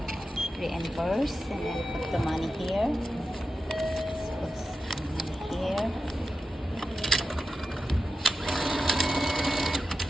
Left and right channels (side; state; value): both; normal; correlation 0.91